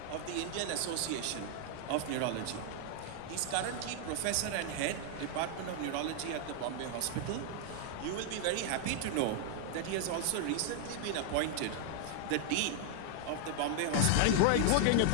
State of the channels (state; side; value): different; both; correlation 0.00